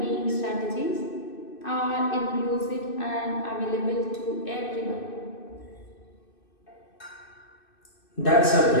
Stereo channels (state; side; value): late; right; 2.6 ms